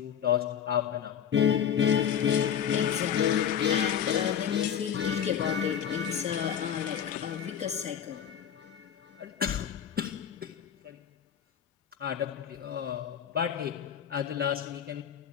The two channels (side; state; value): right; quieter; 8.7 dB